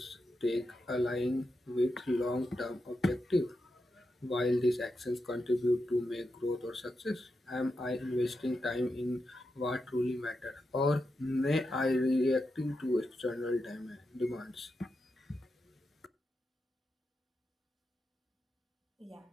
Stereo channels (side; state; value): both; normal; correlation 0.87